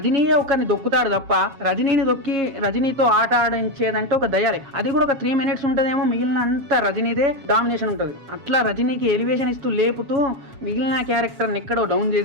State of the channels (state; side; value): late; left; 7.3 ms